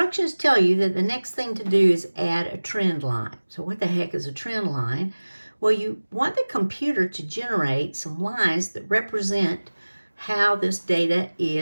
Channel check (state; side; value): inverted; both; correlation -1.00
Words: tell you that the next thing to do is add a trend line. So what the heck is a trend line? Well, you want the computer to generate some lines that represent how this data